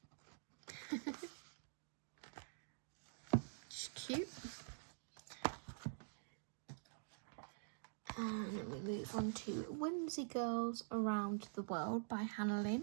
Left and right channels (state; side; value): silent; left; digital silence